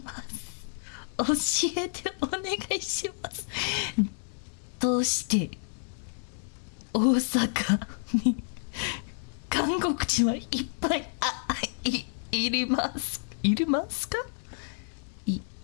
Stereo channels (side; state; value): right; silent; digital silence